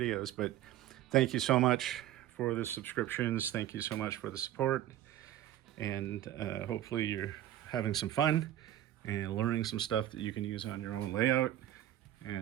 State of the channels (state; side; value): quieter; left; 12.9 dB